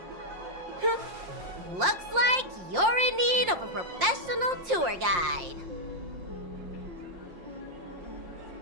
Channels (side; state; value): left; late; 5.6 ms